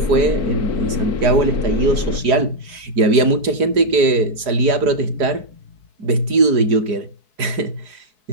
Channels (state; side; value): late; left; 5.0 ms